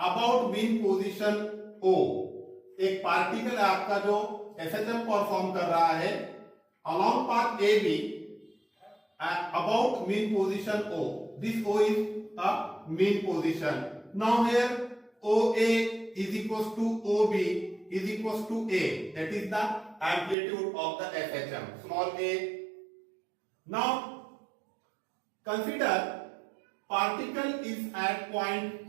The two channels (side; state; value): left; drops out; at 20.4 s